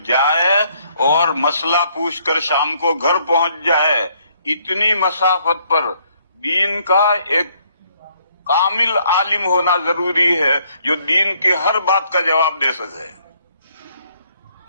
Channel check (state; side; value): inverted; both; correlation -0.67